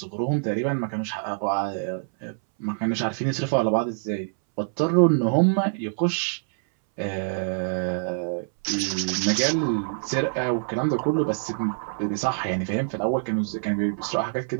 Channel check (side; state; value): left; silent; 62 dB below the other